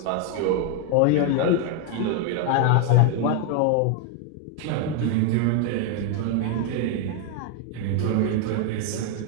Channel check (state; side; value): different; both; correlation 0.01